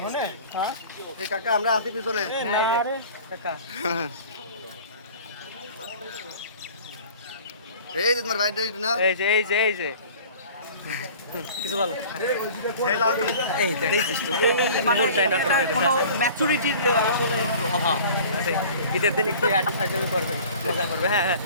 হনে। হ্যাঁ এই কাকা আমরা আছি পিছনে। আরে কাকা, এই যে তোমার বাইরে না, এই যে কিছু বলো। এই দেখিস তো কোনো ম্যাচুরিটির আসলে অভাব আছে। ঈদের দিন একটু আর্টি ফাইজে করবে, মজা করবে। হ্যাঁ,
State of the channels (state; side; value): inverted; both; correlation -0.44